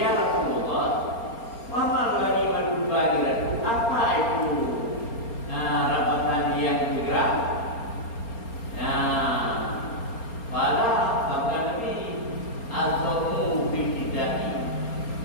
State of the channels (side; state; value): right; late; 4.3 ms